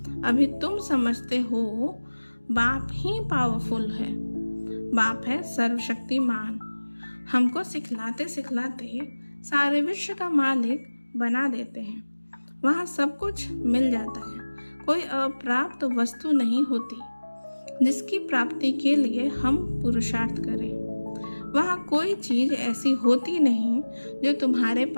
अभी तुम समझते हो बाप ही पावरफुल है। बाप है सर्वशक्तिमान। हमको सिखलाते सिखलाते सारे विश्व का मालिक बना देते हैं। वहाँ सब कुछ मिल जाता है। कोई अप्राप्त वस्तु नहीं होती जिसकी प्राप्ति के लिए हम पुरुषार्थ करें। वहाँ कोई चीज ऐसी होती नहीं जो तुम्हारे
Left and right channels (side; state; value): both; inverted; correlation -1.00